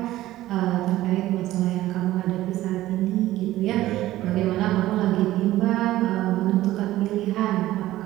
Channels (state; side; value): quieter; left; 15.4 dB